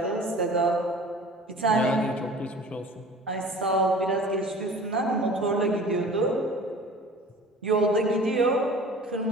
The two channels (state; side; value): normal; both; correlation 0.43